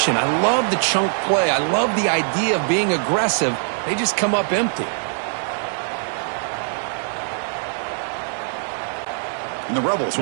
I love the chunk play. I love the idea of being aggressive. They just come up empty. And the Rebels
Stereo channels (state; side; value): silent; left; digital silence